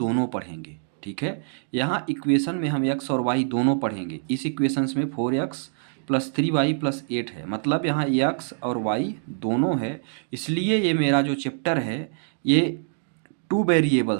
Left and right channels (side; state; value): left; silent; digital silence